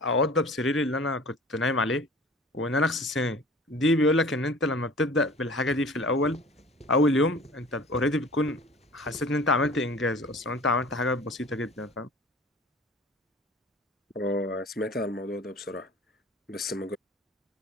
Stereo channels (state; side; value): normal; both; correlation 0.44